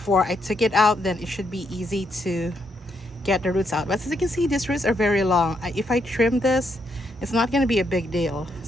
I took it out, then it should be easy to get the roots out. But as you can see, these roots are very long. If I trim this, it's not going to be a big deal,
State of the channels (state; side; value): normal; both; correlation 0.77